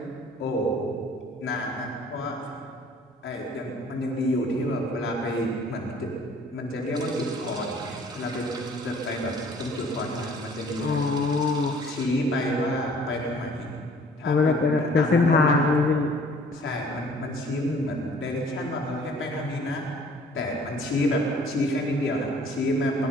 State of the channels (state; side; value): normal; both; correlation 0.54